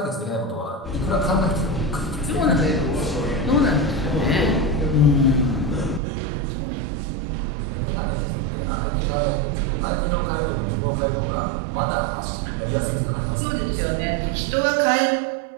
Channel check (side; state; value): left; drops out; at 6.0 s